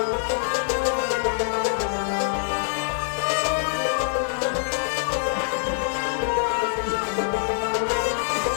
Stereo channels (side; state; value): right; silent; digital silence